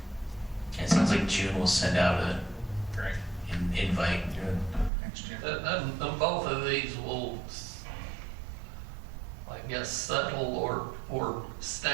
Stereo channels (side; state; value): left; drops out; at 4.9 s